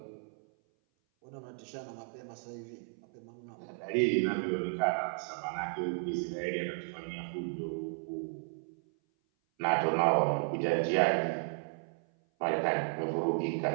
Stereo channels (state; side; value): silent; left; 55 dB below the other